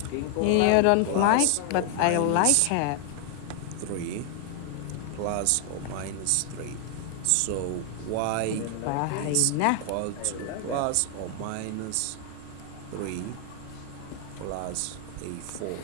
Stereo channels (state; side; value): different; both; correlation 0.00